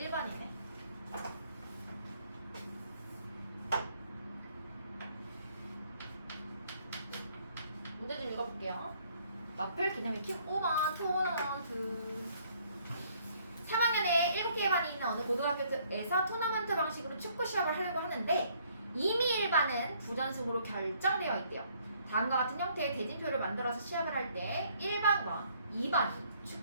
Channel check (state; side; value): inverted; both; correlation -0.64